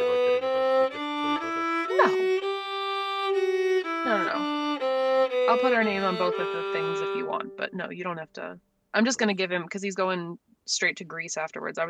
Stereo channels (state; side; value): identical; both; correlation 1.00